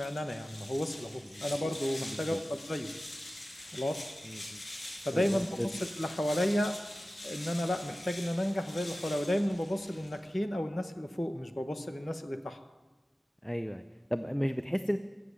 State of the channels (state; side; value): normal; both; correlation 0.96